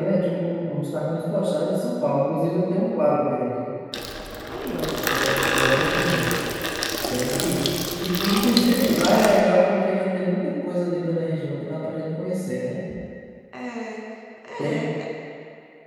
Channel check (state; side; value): identical; both; correlation 1.00